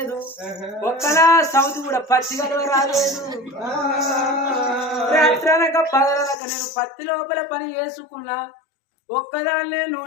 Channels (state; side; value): drops out; right; at 6.4 s